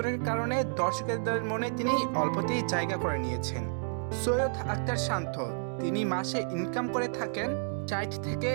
কারণে দর্শকদের মনে তিনি অল্পতেই জায়গা করে নিয়েছেন। সৈয়দ আখতার শান্ত তিনি মাসে ইনকাম করে থাকেন 60 থেকে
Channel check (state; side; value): silent; left; digital silence